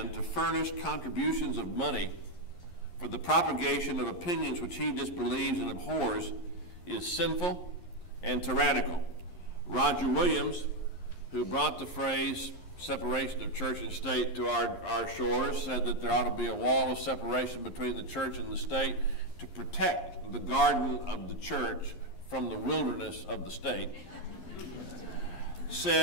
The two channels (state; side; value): late; right; 11 ms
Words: to furnish contributions of money for the propagation of opinions which he disbelieves and abhors is sinful and tyrannical. Roger Williams, who brought the phrase separation of church and state to our shores, said that there ought to be a wall of separation between the church and the state to protect the garden of the church from the wilderness of the state.